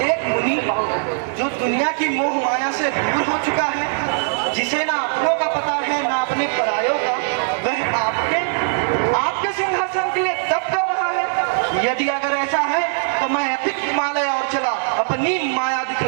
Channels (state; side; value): silent; left; digital silence